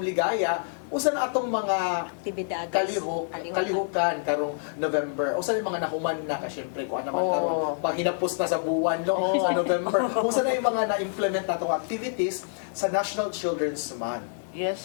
usa na atong mga Aktibidades. kalihukan karong November. Usa yung mga nahuman na ka syempre kuan naman Oo. karon panghinapos na sa buwan no sa November. Usa na yung mga na-implement natong activities sa National Children's Month. Yes,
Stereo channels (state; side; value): silent; right; digital silence